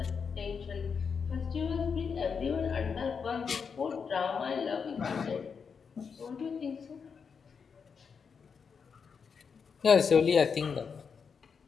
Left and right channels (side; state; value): right; quieter; 6.0 dB